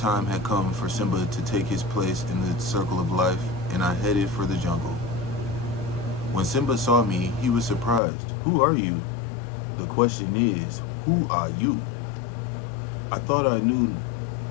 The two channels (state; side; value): drops out; right; at 8.0 s